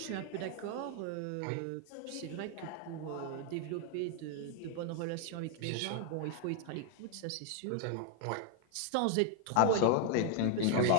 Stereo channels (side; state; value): both; different; correlation 0.00